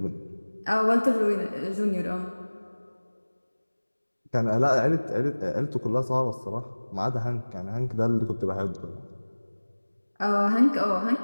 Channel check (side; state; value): both; inverted; correlation -1.00